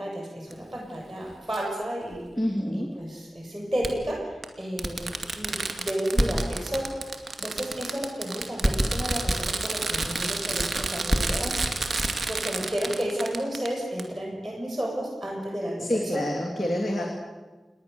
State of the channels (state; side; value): normal; both; correlation 0.94